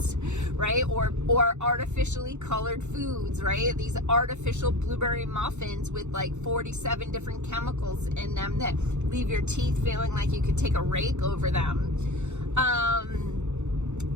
right? Or artificially colored foods, right? These artificial blueberry muffins with 47 different chemicals in them that leave your teeth feeling like you could take a rake over them.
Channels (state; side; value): late; left; 0.83 ms